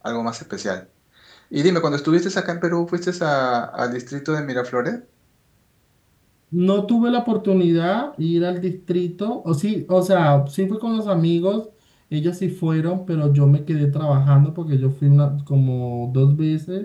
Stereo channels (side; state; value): both; identical; correlation 1.00